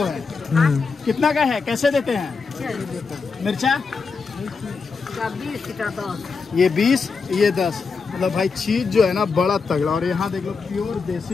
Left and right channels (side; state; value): right; quieter; 4.9 dB